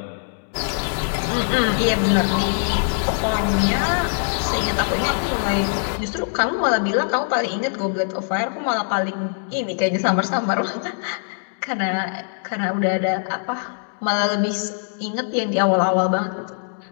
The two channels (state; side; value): silent; right; digital silence